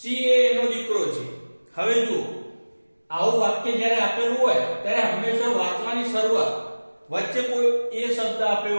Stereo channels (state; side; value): inverted; both; correlation -1.00